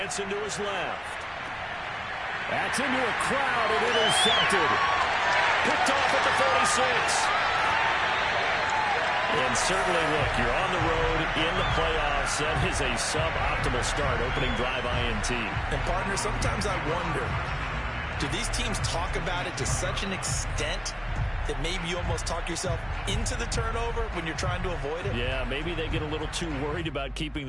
to his left. That's into a crowd and intercepted. Picked off at the 46. And certainly, look, you're on the road in the playoffs. That is a suboptimal start, opening drive INT. And, partner, sometimes I wonder, do these teams talk about it to such an extent that maybe you almost talk yourself into the turnover when you're trying to avoid it? Yeah, maybe they get a little too worried about keeping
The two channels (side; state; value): both; identical; correlation 1.00